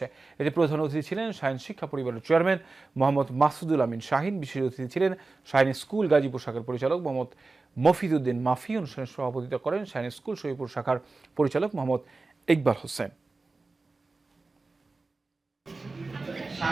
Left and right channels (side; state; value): left; quieter; 3.6 dB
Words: এতে প্রধান অতিথি ছিলেন শাহিন শিক্ষা পরিবারের চেয়ারম্যান মোহাম্মদ মাসুদুল আমিন শাহিন। বিশেষ অতিথি ছিলেন শাহিনী স্কুল গাজীপুর শাখার পরিচালক মোহাম্মদ মফিদউদ্দিন মাফি। অনুষ্ঠানে সভাপতিত্ব করেন শাহিনী স্কুল শফিপুর শাখার পরিচালক মোহাম্মদ ইকবাল হোসেন।